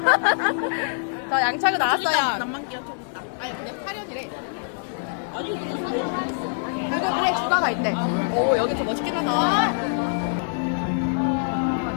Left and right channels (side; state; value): right; silent; digital silence